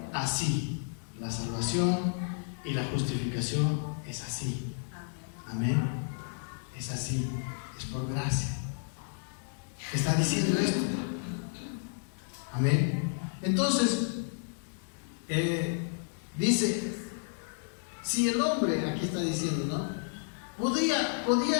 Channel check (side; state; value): right; silent; 57 dB below the other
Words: así. La salvación y la justificación es así. Amén. Es así. Es por gracia. Está diciendo esto. Amén. Entonces, dice, si el hombre, aquí está diciendo, ¿no? Podía